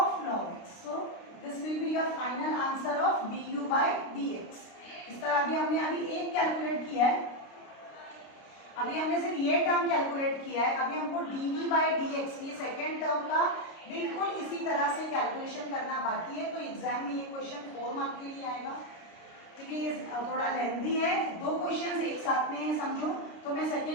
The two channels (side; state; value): right; late; 29 ms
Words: log x. So this will be your final answer of du by dx. इस तरह अभी एक कैलकुलेट किया है, अभी हमने सिर्फ ये टर्म कैलकुलेट किया है, अभी हमको dv by dx ये सेकेंड टर्म का बिल्कुल इसी तरह से कैलकुलेशन करना बाकी है. तो एग्जाम में ये क्वेश्चन 4 मार्क के लिए आएगा क्योंकि ये थोड़ा लेंथी है, 2 क्वेश्चंस एक साथ में है समझो. तो मैं